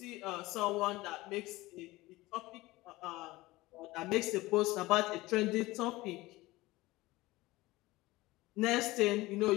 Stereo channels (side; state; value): right; quieter; 19.6 dB